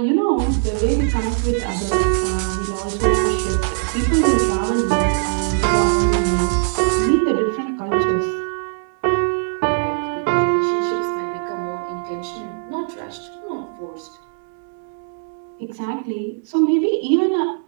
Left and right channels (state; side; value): silent; left; digital silence